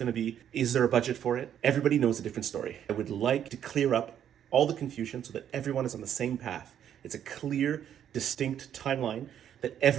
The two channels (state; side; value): quieter; left; 9.7 dB